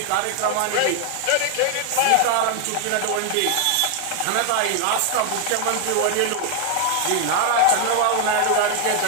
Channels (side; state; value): both; different; correlation 0.00